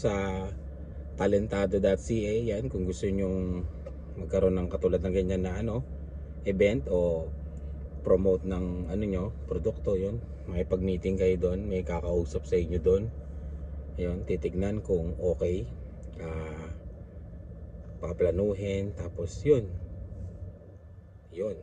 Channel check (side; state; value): both; identical; correlation 1.00